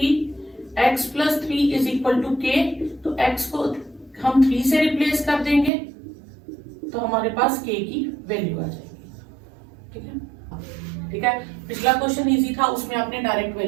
x plus 3 is equal to k, तो x को हम 3 से रिप्लेस कर देंगे तो हमारे पास k की वैल्यू आ जाएगी, ठीक है। ठीक है, पिछला क्वेश्चन इजी था, उसमें आपने डायरेक्ट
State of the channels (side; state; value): left; drops out; at 5.7 s